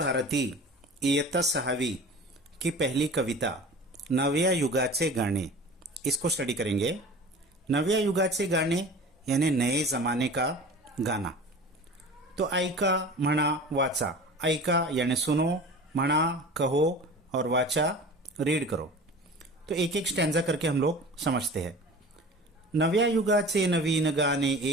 इयत्ता 6वी की पहली कविता नव्या युगाचे गाणे इसको स्टडी करेंगे। नव्या युगाचे गाणे यानी नए जमाने का गाना। तो ऐका, म्हणा, वाचा। ऐका यानी सुनो, म्हणा कहो और वाचा रीड करो। तो एक एक स्टैंजा करके हम लोग समझते हैं। नव्या युगाचे नवीन गाणे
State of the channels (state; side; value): normal; both; correlation 0.39